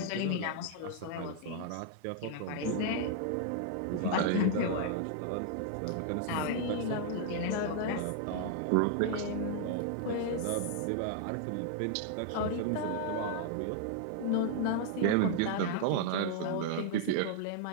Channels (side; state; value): both; different; correlation -0.01